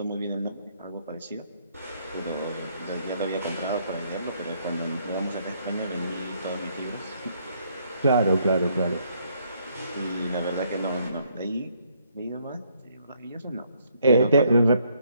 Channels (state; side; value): inverted; both; correlation -0.69